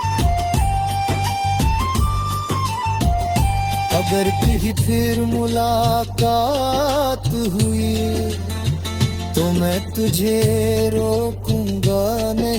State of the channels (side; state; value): both; identical; correlation 1.00